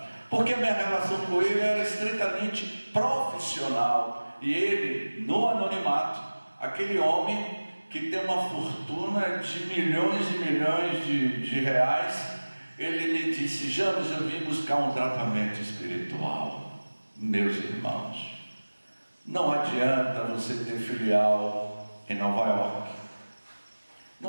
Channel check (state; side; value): inverted; both; correlation -1.00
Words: porque a minha relação com ele era estritamente profissional. E ele, no anonimato, aquele homem que tem uma fortuna de milhões e milhões de reais, ele me disse: James, eu vim buscar um tratamento espiritual. Meus irmãos, não adianta você ter filial em Nova York,